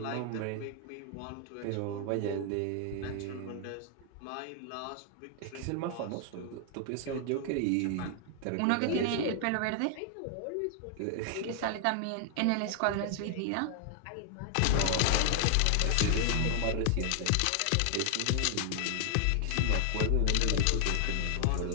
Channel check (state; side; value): different; both; correlation 0.00